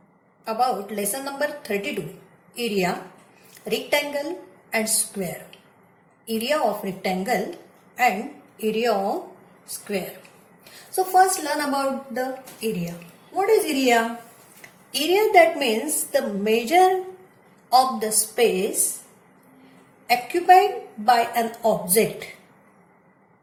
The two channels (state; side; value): identical; both; correlation 1.00